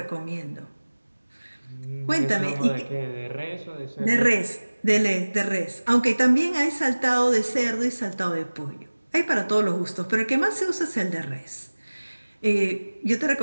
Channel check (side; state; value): both; inverted; correlation -1.00